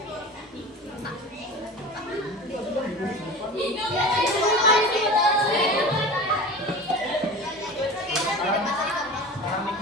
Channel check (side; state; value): both; normal; correlation 0.34